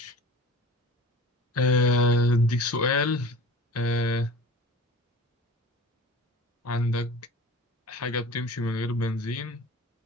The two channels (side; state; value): both; normal; correlation 0.39